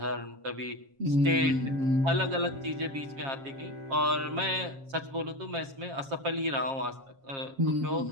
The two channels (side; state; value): left; late; 7.4 ms